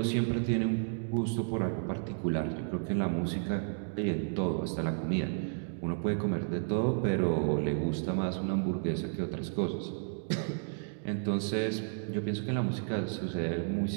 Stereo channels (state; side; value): silent; left; digital silence